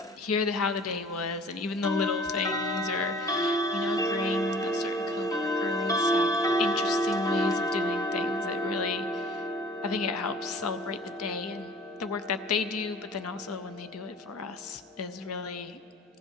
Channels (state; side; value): normal; both; correlation 0.48